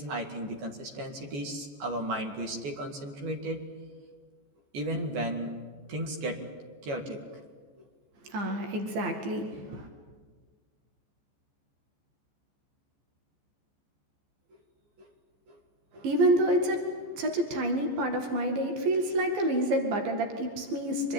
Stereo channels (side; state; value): left; late; 14 ms